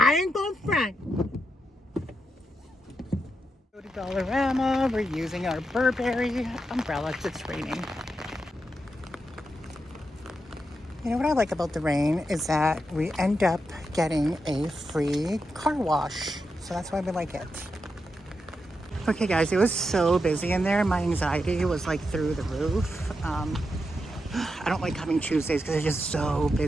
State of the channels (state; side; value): normal; both; correlation 0.86